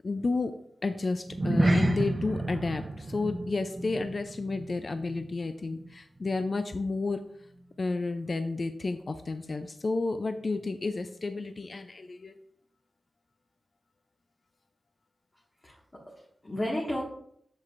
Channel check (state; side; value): normal; both; correlation 0.95